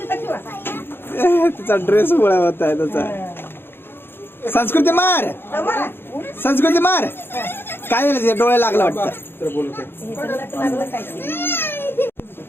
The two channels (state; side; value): late; right; 0.10 ms